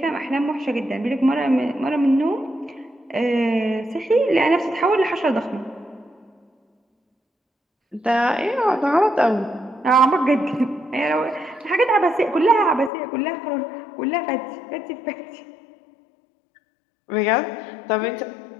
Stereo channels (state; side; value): drops out; right; at 12.9 s